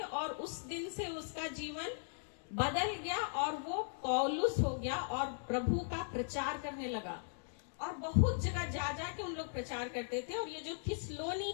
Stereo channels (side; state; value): right; silent; digital silence